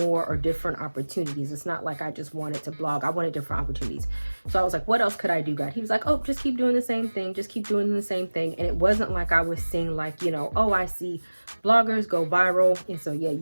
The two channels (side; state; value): both; inverted; correlation -1.00